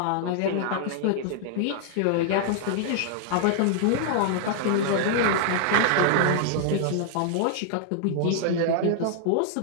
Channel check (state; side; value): different; both; correlation -0.01